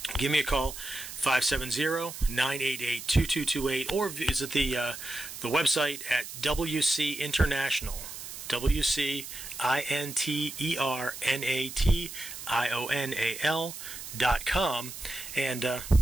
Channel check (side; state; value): right; noise; hiss, 10 dB below the sound